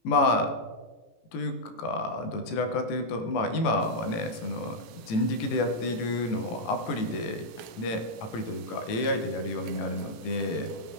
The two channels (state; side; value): late; right; 18 ms